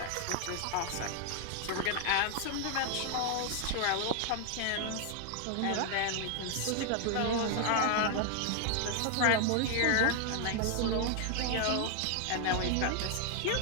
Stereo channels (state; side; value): different; both; correlation 0.01